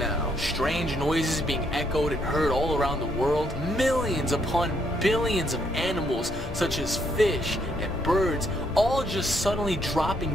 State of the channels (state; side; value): normal; both; correlation 0.73